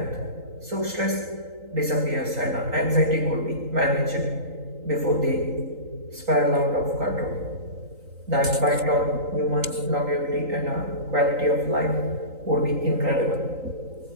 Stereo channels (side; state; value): left; late; 3.9 ms